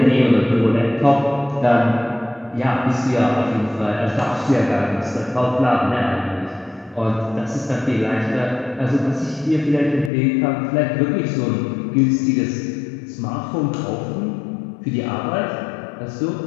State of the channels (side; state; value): right; drops out; at 10.1 s